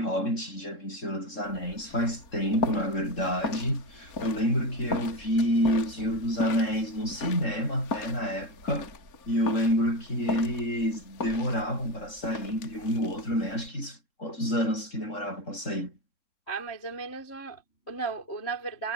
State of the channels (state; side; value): late; right; 3.7 ms